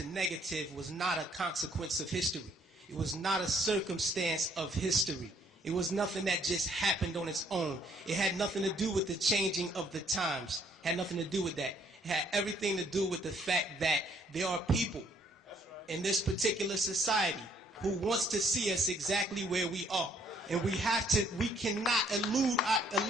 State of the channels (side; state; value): both; normal; correlation 0.64